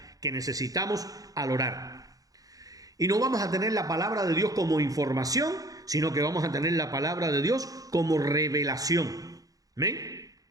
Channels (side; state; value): left; late; 0.17 ms